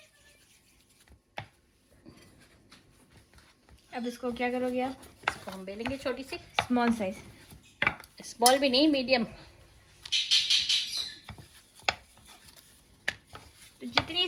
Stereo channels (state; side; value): identical; both; correlation 1.00